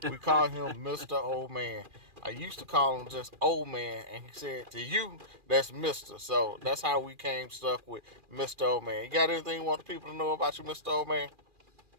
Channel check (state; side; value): late; left; 2.4 ms